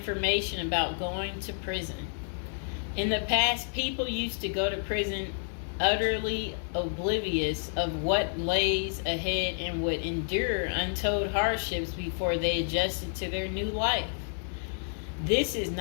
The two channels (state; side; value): silent; right; digital silence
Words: about going to prison. In the past, people used to go to prison utterly oblivious of what lays ahead and would endure untold hardships before they adjusted to their new life. This is